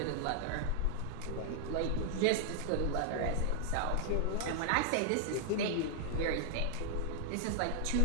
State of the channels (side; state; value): both; different; correlation 0.00